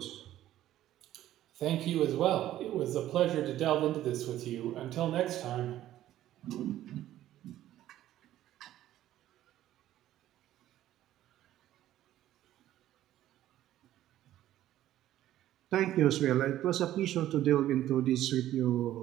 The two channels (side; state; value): left; quieter; 13.3 dB